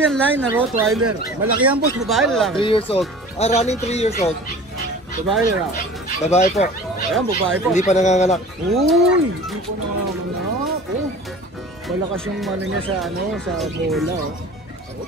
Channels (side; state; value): both; normal; correlation 0.41